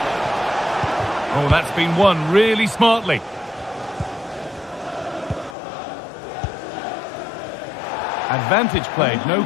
Oh, that's been won really smartly. Advantage played, no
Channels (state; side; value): drops out; right; at 5.6 s